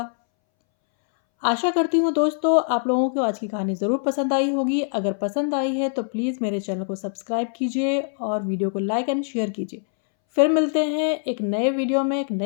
आशा करती हूँ दोस्तों आप लोगों को आज की कहानी ज़रूर पसंद आई होगी। अगर पसंद आई है तो प्लीज़ मेरे चैनल को सब्सक्राइब कीजिए और वीडियो को लाइक एंड शेयर कीजिए। फिर मिलते हैं एक नए वीडियो में एक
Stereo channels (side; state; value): right; silent; 62 dB below the other